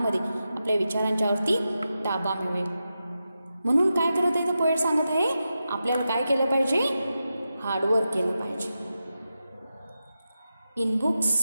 आपल्या विचारांच्यावरती ताबा मिळवेल. म्हणून काय करत आहे, तर पोएट सांगत आहे आपल्याला काय केलं पाहिजे, हार्डवर्क केलं पाहिजे. इन बुक्स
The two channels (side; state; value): both; inverted; correlation -0.90